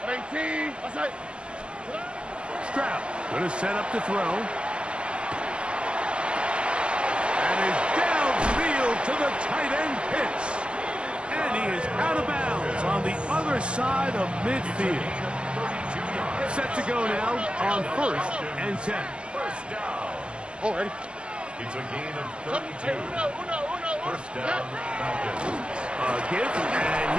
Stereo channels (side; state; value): left; late; 0.057 ms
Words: 18. Outside. Stroud going to set up to throw. And is downfield to the tight end Pitts. And he is out of bounds on the other side of midfield. Set to go now on 1st and 10. 1st down. Already. It's a gain of 32. 1st down, Falcons. A give,